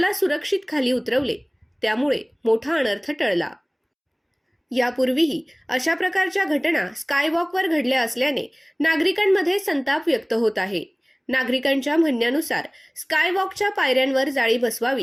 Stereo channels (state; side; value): identical; both; correlation 1.00